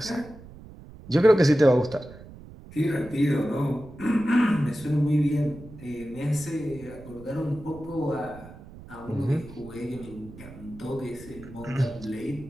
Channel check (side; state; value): right; noise; rumble, 17 dB below the sound